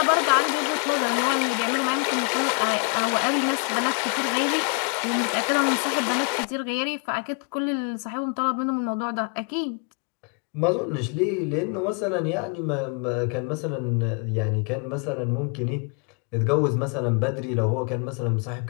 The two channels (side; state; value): right; quieter; 37.9 dB